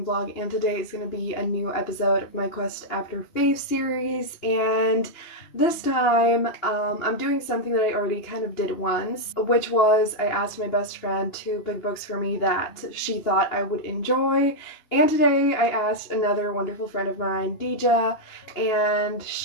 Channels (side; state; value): right; late; 2.8 ms